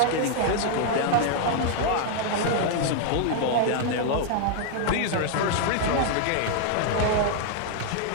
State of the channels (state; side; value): different; both; correlation 0.00